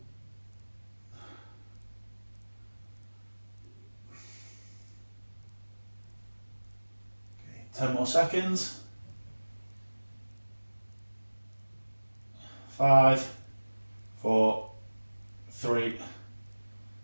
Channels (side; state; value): both; inverted; correlation -1.00